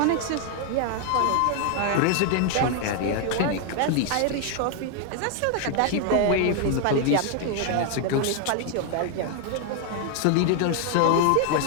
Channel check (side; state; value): both; different; correlation 0.00